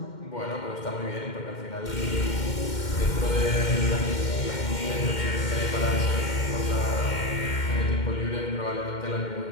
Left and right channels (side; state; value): right; late; 2.1 ms